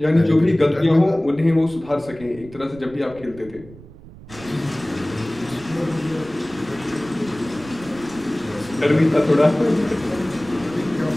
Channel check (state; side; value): noise; right; rumble, 19 dB below the sound